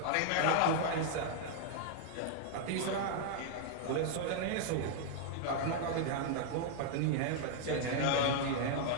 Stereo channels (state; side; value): different; both; correlation -0.01